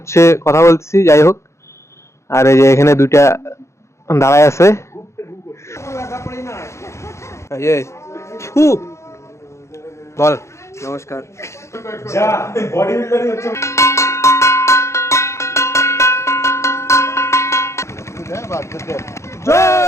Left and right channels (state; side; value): late; right; 0.14 ms